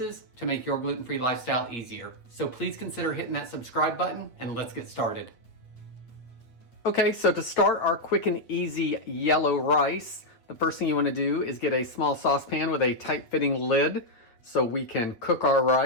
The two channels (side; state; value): right; late; 8.3 ms